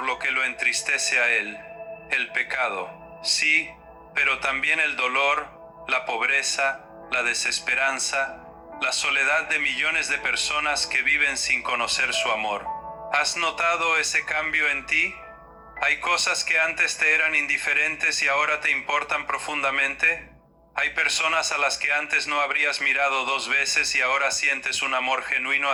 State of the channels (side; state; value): both; identical; correlation 1.00